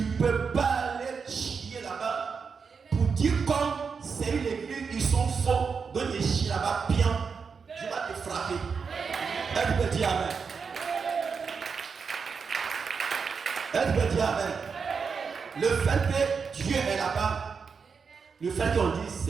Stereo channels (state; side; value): quieter; left; 5.6 dB